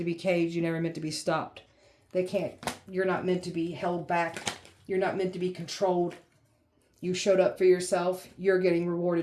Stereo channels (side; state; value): both; identical; correlation 1.00